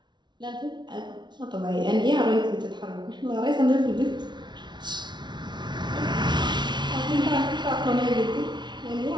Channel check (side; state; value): left; late; 0.21 ms